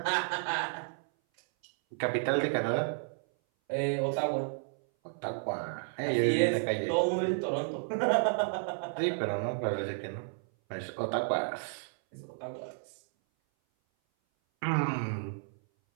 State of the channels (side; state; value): left; silent; 56 dB below the other